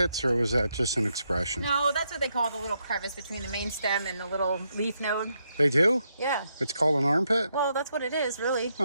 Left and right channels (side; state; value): both; inverted; correlation -0.80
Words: or was that just an expression? No, that's what they call the little crevice between the main stem and the little leaf node. They do? Yeah. It's called an armpit? Well, that's what it is, really.